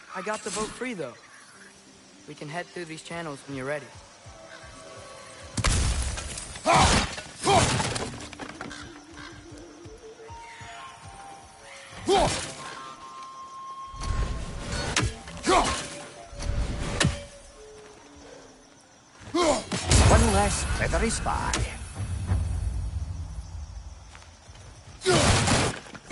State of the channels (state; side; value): identical; both; correlation 1.00